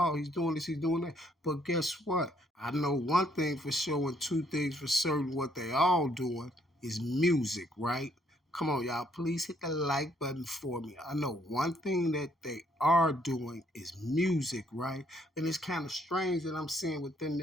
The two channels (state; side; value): normal; both; correlation 0.68